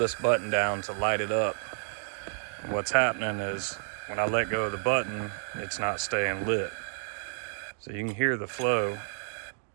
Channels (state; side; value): silent; left; digital silence